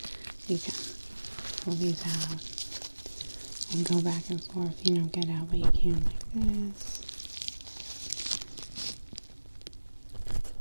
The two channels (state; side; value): inverted; both; correlation -1.00